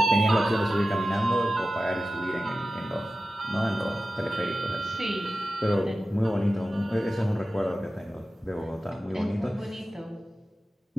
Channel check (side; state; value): both; normal; correlation 0.94